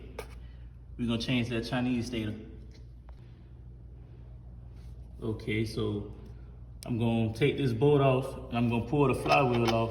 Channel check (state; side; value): identical; both; correlation 1.00